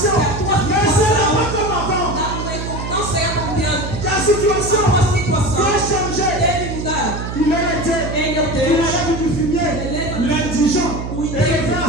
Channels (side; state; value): right; noise; hum, 6 dB below the sound